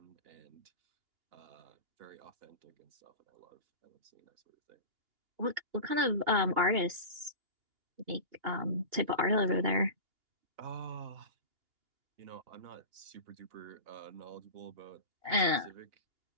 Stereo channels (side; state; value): left; late; 2.8 ms